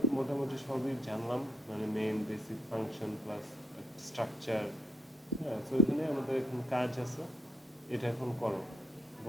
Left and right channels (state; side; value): normal; both; correlation 0.74